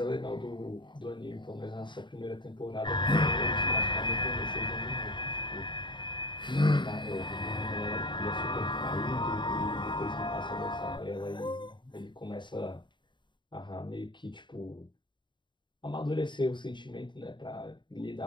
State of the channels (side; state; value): right; late; 0.23 ms